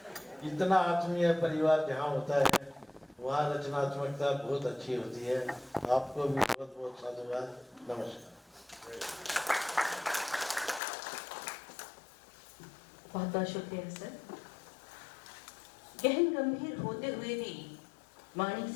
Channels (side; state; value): right; drops out; at 10.8 s